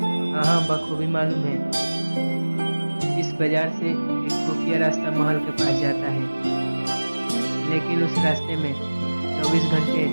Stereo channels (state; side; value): inverted; both; correlation -1.00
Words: हाँ, बखूबी मालूम है। इस बाजार से एक खुफिया रास्ता महल के पास जाता है, लेकिन उस रास्ते में 24 घंटे